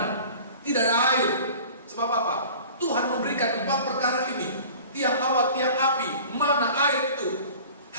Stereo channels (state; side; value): inverted; both; correlation -0.43